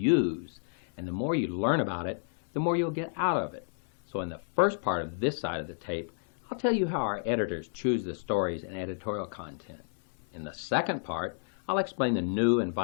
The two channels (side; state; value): right; silent; 56 dB below the other